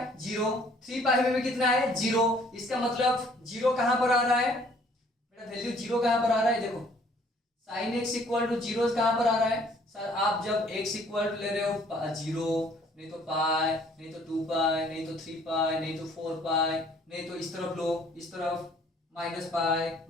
जीरो, 3 पाई में भी कितना है जीरो, इसका मतलब जीरो कहां पर आ रहा है बेटा, वैल्यू जीरो कहां पर आ रहा है, देखो sine x equal to zero कहां पर आ रहा है सर, आप जब x इक्वल टू ले रहे हो जीरो, नहीं तो पाई, नहीं तो 2 पाई, नहीं तो 3 पाई, नहीं तो 4 पाई, नहीं तो इस तरफ लो, इस तरफ माइनस पाई,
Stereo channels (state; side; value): normal; both; correlation 0.59